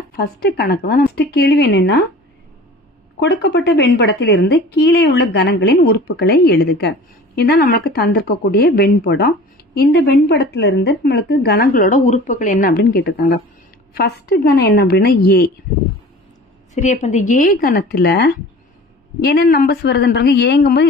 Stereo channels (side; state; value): both; normal; correlation 0.42